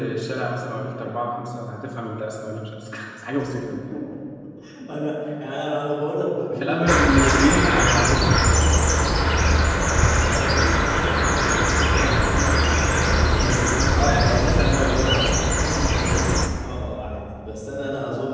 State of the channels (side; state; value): both; identical; correlation 1.00